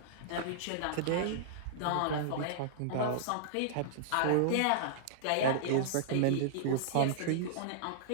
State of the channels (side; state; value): both; different; correlation -0.01